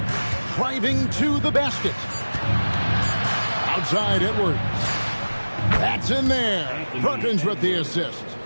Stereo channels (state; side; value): inverted; both; correlation -1.00